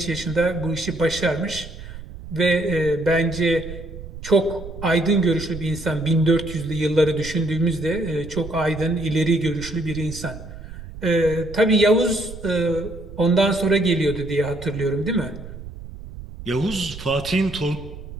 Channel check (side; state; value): right; noise; rumble, 13 dB below the sound